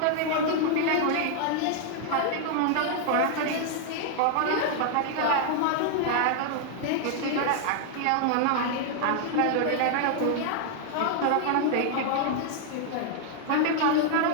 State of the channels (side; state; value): both; different; correlation 0.00